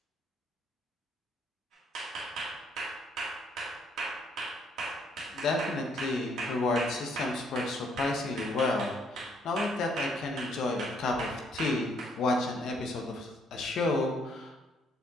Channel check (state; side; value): normal; both; correlation 0.68